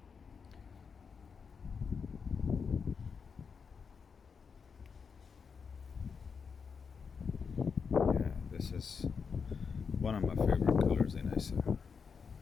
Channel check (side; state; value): right; quieter; 5.8 dB